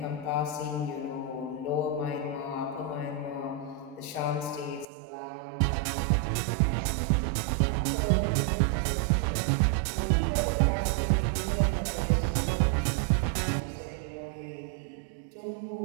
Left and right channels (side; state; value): left; drops out; at 4.9 s